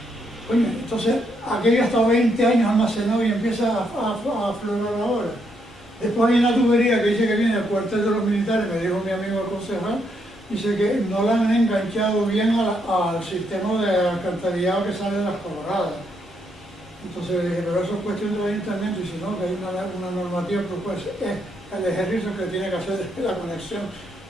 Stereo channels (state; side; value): normal; both; correlation 0.76